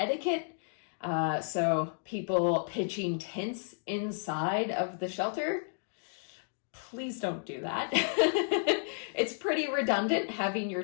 So people pitching tents inside of the shelter, please don't do that. It's pretty redundant having your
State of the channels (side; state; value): right; silent; digital silence